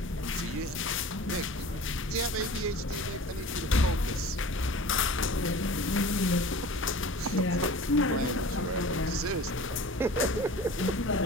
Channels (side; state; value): both; normal; correlation 0.41